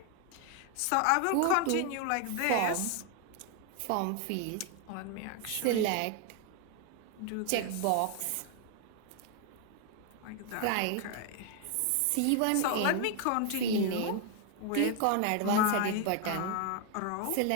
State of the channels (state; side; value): different; both; correlation 0.01